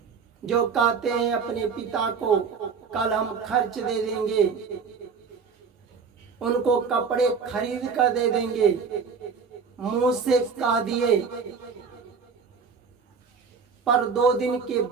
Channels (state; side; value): quieter; left; 5.6 dB